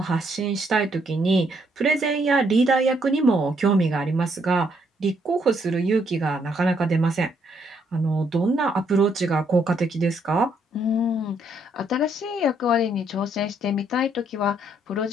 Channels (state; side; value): normal; both; correlation 0.71